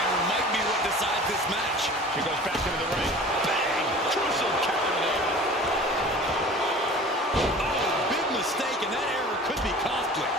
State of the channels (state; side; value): normal; both; correlation 0.42